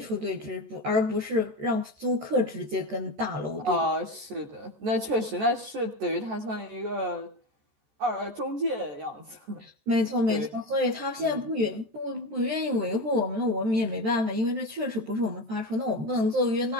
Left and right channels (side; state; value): left; late; 14 ms